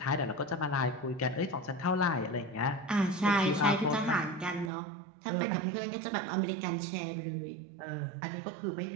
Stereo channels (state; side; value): drops out; left; at 4.7 s